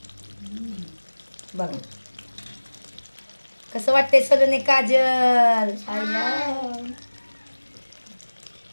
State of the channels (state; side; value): inverted; both; correlation -1.00